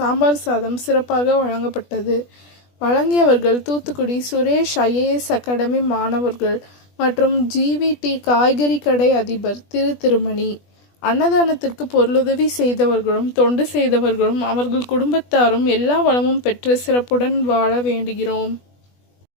சாதம் சிறப்பாக வழங்கப்பட்டது. வழங்கியவர்கள் தூத்துக்குடி சுரேஷ் IAS அகாடமி மாணவர்கள் மற்றும் GVT காய்கறி கடை அதிபர் திருமணி. அன்னதானத்திற்கு பொருளுதவி செய்தவர்களும் தொண்டு செய்தவர்களும் அவர்கள் குடும்பத்தாரும் எல்லா வளமும் பெற்று சிறப்புடன் வாழ வேண்டுகிறோம்.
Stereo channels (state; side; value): late; right; 20 ms